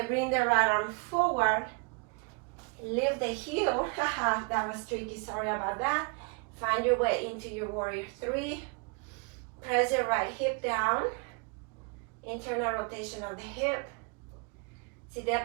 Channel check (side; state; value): left; quieter; 32.3 dB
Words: bring the right arm forward, lift the heel. Haha, that was tricky, sorry about that. Find your way into your warrior three. Press the right hip down, internal rotation of the hip. See